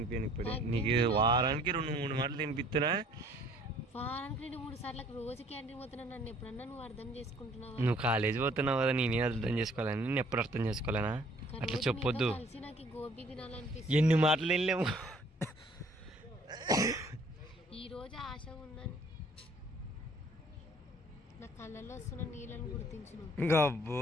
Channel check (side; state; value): both; normal; correlation 0.58